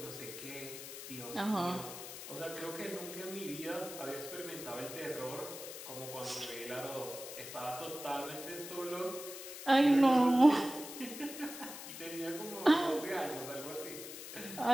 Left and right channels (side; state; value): left; noise; hiss, 10 dB below the sound